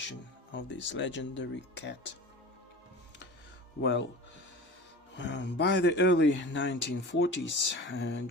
of this legendary cat. Well, by the early 1940s,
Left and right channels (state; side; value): normal; both; correlation 0.35